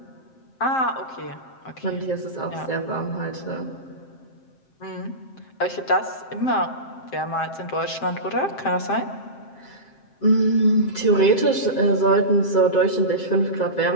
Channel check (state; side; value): late; right; 7.6 ms